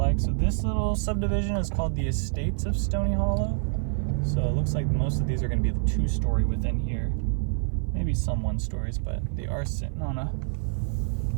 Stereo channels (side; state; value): left; silent; 55 dB below the other